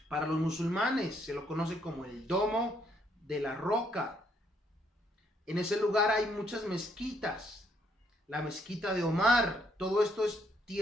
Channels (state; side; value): normal; both; correlation 0.71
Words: para los musulmanes, se lo conoce como el Domo de la Roca. En ese lugar hay muchas mezquitas, la mezquita de Omar. Todo esto es